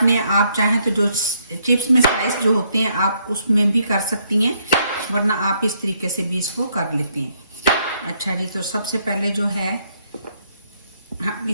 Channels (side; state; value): both; inverted; correlation -0.72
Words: आप चाहें तो जो चिप्स में स्लाइस जो होते हैं आप उसमें भी कर सकती हैं, वरना आप इस तरीके से भी इसको कर लेते हैं। अच्छा जी, तो सबसे पहले जो है हम